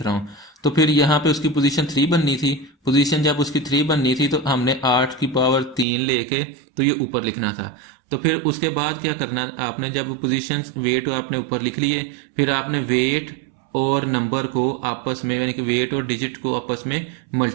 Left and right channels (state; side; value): drops out; left; at 5.9 s